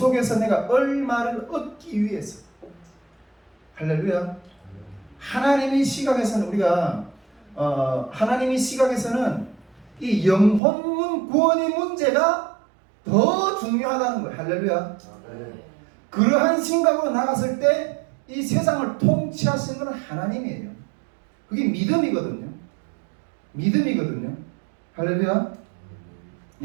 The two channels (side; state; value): left; drops out; at 10.6 s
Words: 내가 얼마를 얻기 위해서. 할렐루야. 하나님의 시각에서는 우리가 하나님의 시각에서는 이 영혼 구원의 문제가 더 중요하다는 거예요. 할렐루야. 그러한 생각으로 나갔을 때 이 세상을 통치하시는 것은 하나님이에요. 그게 믿음이거든요. 믿음이거든요. 할렐루야.